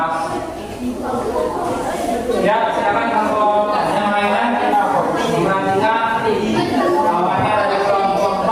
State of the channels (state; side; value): identical; both; correlation 1.00